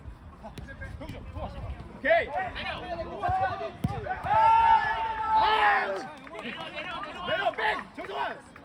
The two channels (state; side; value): identical; both; correlation 1.00